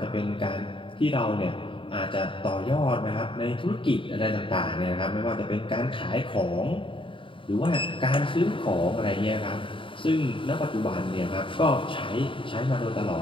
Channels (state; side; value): late; right; 0.25 ms